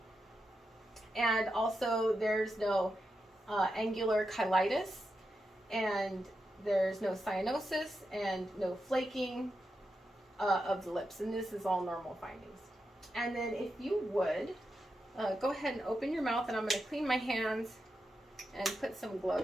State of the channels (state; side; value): normal; both; correlation 0.87